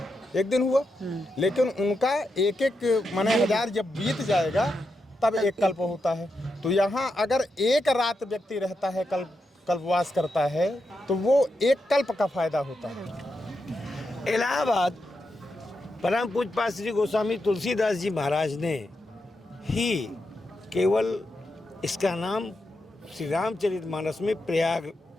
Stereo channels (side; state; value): both; normal; correlation 0.86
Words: एक दिन हुआ। लेकिन उनका एक एक माने 1000 जब बीत जाएगा तब एक कल्प होता है। तो यहाँ अगर एक रात व्यक्ति रहता है, कल्पवास करता है, तो वो एक कल्प का फायदा होता है। इलाहाबाद परम पूज्य श्री गोस्वामी तुलसीदास जी महाराज ने ही केवल इसका नाम श्री रामचरितमानस में प्रयाग